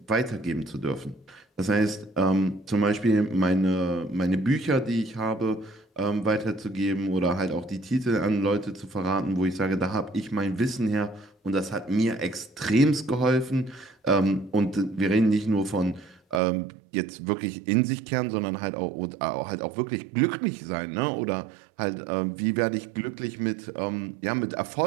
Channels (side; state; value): left; drops out; at 16.4 s